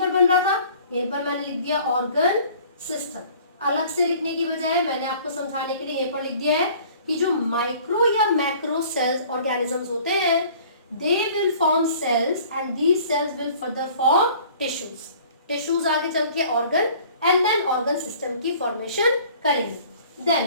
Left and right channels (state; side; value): inverted; both; correlation -0.51